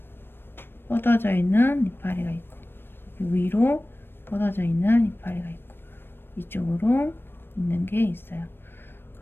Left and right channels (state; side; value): late; right; 0.10 ms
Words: 뻗어져 있는 이파리가 있고 여기 위로 뻗어져 있는 이파리가 있고 이쪽으로 있는 게 있어요.